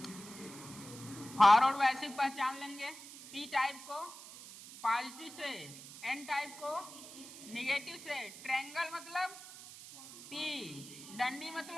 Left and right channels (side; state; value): right; noise; hiss, 15 dB below the sound